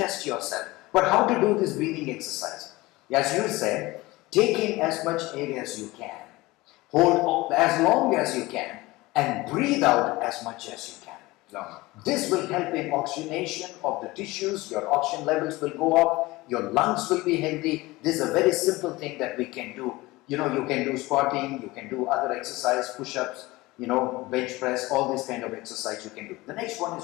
yourself, but how to do this breathing exercise? As you said, take in as much air as you can. Hold as long as you can and breathe out as much as you can. Long. This will help in oxygenation of the tissues, your oxygen levels will go up, your lungs will be healthy. This is a very simple thing that we can do. You know, you can do squatting, you can do other exercise, push-ups, you know, bench press, all this kind of exercise you can do. The next one is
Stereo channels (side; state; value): right; quieter; 20.5 dB